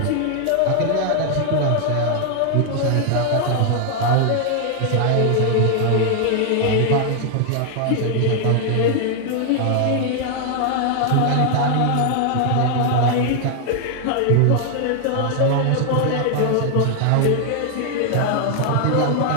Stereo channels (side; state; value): both; different; correlation 0.00